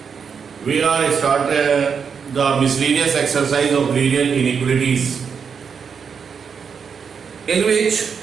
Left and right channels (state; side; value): quieter; left; 6.4 dB